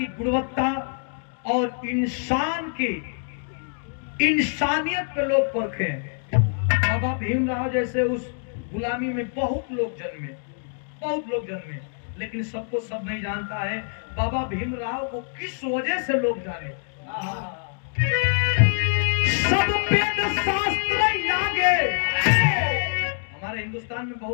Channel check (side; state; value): right; silent; 62 dB below the other